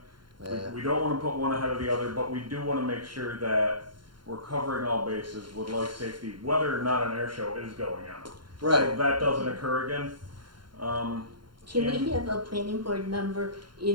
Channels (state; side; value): late; left; 0.72 ms